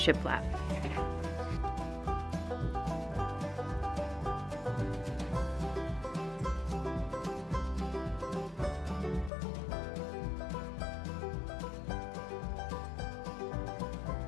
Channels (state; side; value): drops out; right; at 9.3 s